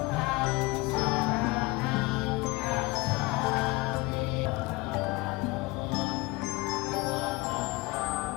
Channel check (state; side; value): quieter; right; 23.3 dB